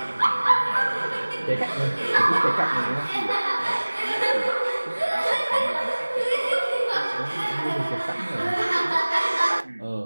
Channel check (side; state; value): both; inverted; correlation -1.00